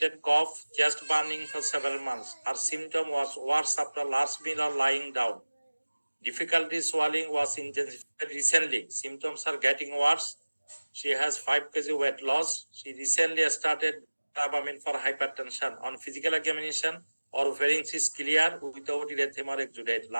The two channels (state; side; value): inverted; both; correlation -1.00